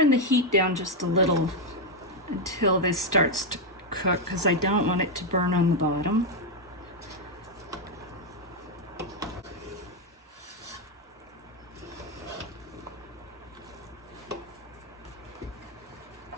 the heat down just a little until this starts to cook, because I don't want it to burn on the bottom.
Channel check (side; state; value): both; normal; correlation 0.02